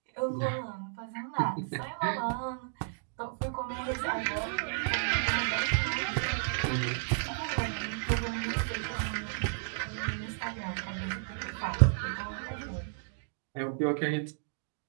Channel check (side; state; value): left; silent; digital silence